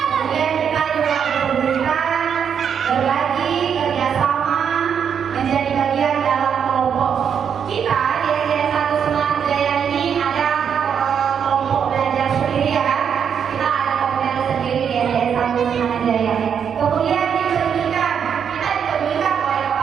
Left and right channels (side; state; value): left; quieter; 7.6 dB